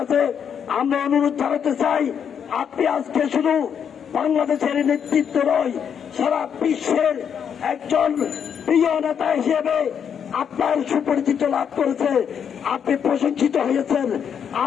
আমরা অনুরোধ জানাতে চাই, আপনি আজকে শুধু বাংলাদেশের নেতৃত্ব নয়, সারা বিশ্বের একজন প্রিয় নেতা হিসেবে আপনার সুপরিচিত লাভ করেছে, আপনি প্রশংসিত হয়েছেন।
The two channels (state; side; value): quieter; right; 7.8 dB